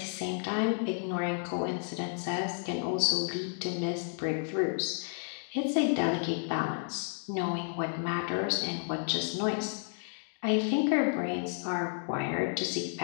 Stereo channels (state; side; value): silent; right; 57 dB below the other